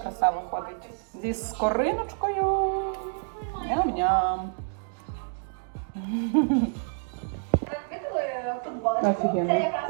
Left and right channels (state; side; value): silent; left; digital silence